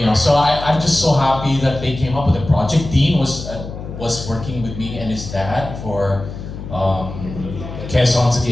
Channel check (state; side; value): noise; left; hum, 10 dB below the sound